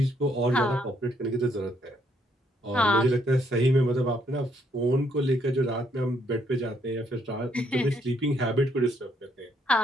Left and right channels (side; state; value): both; normal; correlation 0.71